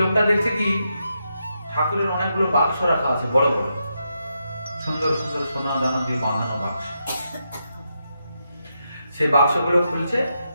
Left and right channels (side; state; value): both; inverted; correlation -0.84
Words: লোকটা দেখছে কি, ঠাকুরের অনেকগুলো বাক্স রাখা আছে, বড় বড় সুন্দর সুন্দর সোনা দানা দিয়ে বাঁধানো বাক্স। সেই বাক্সগুলো খুলছে,